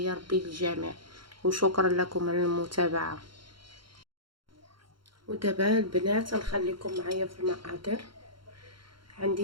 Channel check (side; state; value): left; late; 0.73 ms